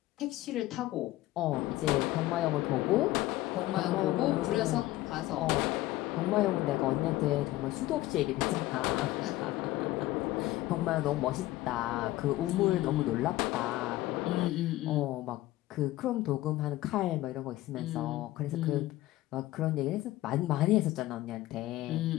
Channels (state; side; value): quieter; right; 16.7 dB